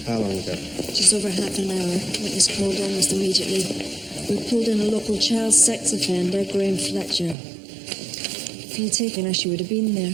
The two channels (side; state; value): left; drops out; at 7.4 s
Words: How long ago? Just over half an hour. Witness called almost immediately. We pulled in a local child sex offender, Graham Fletcher. If he'd taken her, she would have been there.